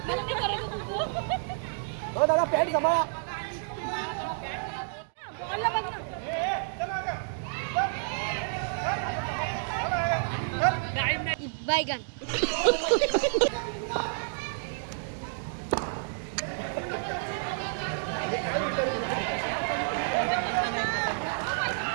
हो दादा पॅन्ट सांभाळा बैगन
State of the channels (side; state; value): left; silent; digital silence